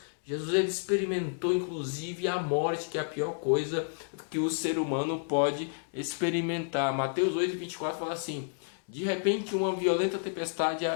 Jesus ele experimentou inclusive a morte, que é a pior coisa que o ser humano pode experimentar. Mateus 8:24 fala assim: de repente uma violenta tempestade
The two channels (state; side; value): silent; right; digital silence